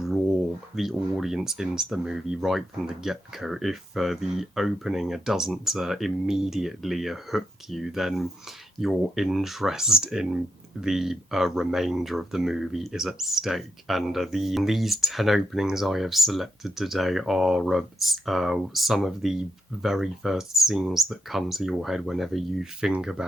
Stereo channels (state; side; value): normal; both; correlation 0.83